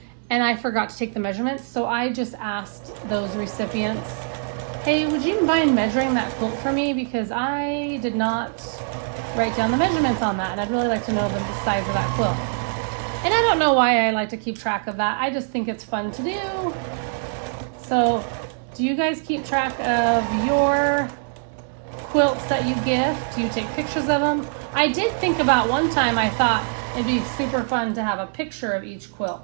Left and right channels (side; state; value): left; silent; 63 dB below the other